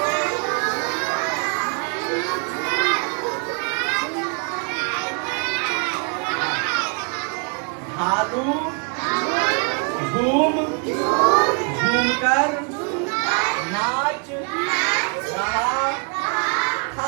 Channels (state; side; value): quieter; left; 39.2 dB